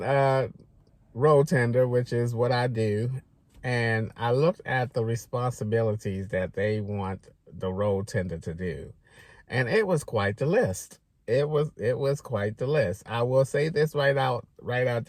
road tender, which is what I do. And I looked at the responsibilities that they want the road tender to do. And it was quite the list. It was quite the list. I will say this right out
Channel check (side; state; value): both; identical; correlation 1.00